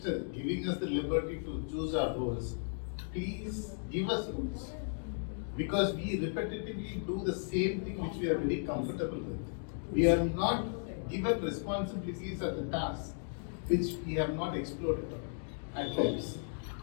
giving us the liberty to choose our roles, please give us rules. Because we repetitively do the same thing which we are very comfortable with. We are not given responsibilities at the task which we have not explored at times.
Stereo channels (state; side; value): silent; right; digital silence